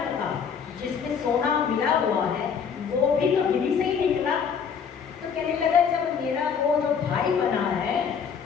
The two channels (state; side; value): quieter; right; 6.8 dB